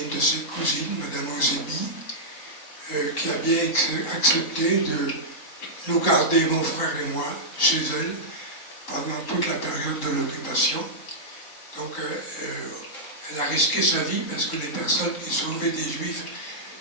une de ses cousines, Madame Ozebi, qui a bien accepté de nous garder, mon frère et moi, chez elle pendant toute la période de l'occupation. Donc elle a risqué sa vie parce que les personnes qui sauvaient des Juifs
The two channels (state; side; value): late; right; 3.8 ms